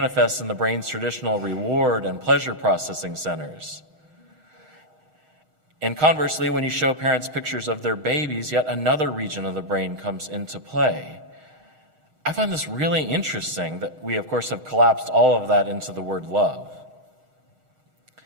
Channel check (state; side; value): late; left; 6.4 ms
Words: in the brain's traditional reward and pleasure processing centers. And conversely, when you show parents pictures of their babies, yet another region of the brain comes into play. I find this really interesting that we, of course, have collapsed all of that into the word love.